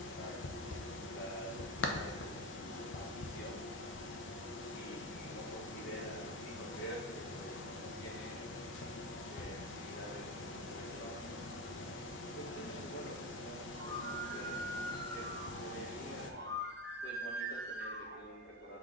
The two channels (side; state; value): both; normal; correlation 0.20